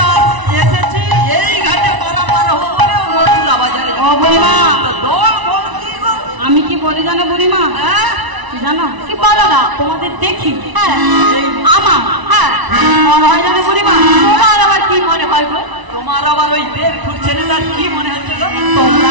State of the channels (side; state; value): left; late; 1.0 ms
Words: এসেছি এই ঘাটে পারাপার হবো বলে মথুরা বাজারে ও বুড়িমা দল বল কি গো আমি কি বলি জানো বুড়িমা কি জানো কি বলো না তোমাদের দেখি আমার মনে হয় জানো বুড়িমা তোমার আবার কি মনে হয় গো তোমার আবার ওই 1.5 ফুট ছেলেটার কি মনে হচ্ছে গো তোমরা